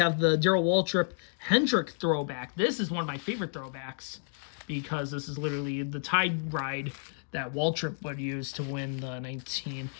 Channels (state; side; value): silent; right; digital silence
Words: the Darrell Waltrip Hendrick throwback. This is one of my favorite throwbacks because this is literally the tide ride that Waltrip would use to win the